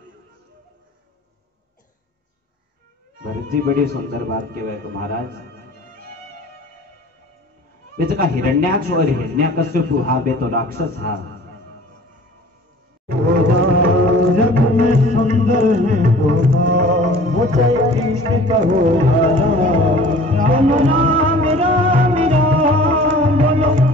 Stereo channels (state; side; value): normal; both; correlation 0.46